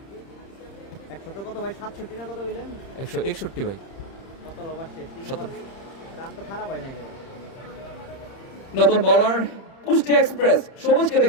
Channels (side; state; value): right; late; 30 ms